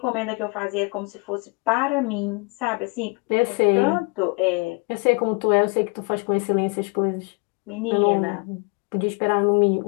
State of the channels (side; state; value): right; quieter; 31.5 dB